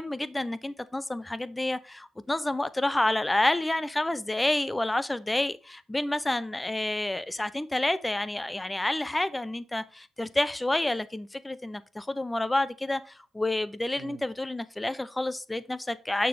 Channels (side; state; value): both; normal; correlation 0.98